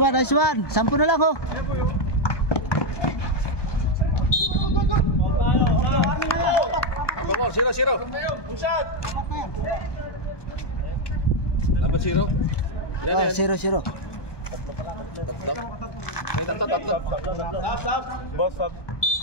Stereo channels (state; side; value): late; right; 1.2 ms